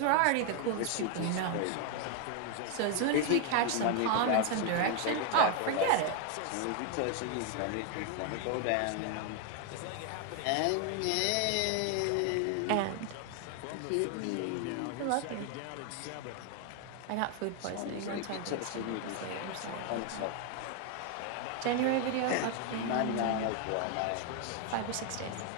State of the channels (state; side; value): different; both; correlation 0.01